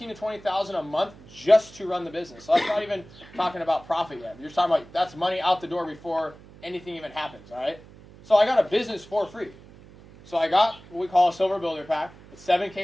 to $20,000 a month just to run the business. So that's not even talking about profit yet. You're talking about that's money out the door before anything even happens, all right? So I got a business for free. So I got what we call a silver builder pack. It's 7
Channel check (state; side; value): noise; right; hum, 21 dB below the sound